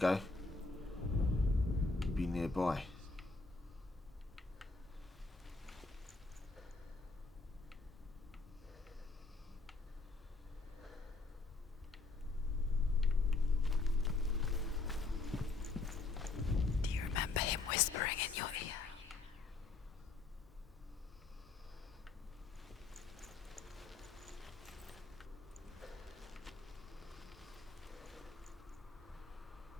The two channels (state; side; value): quieter; right; 3.7 dB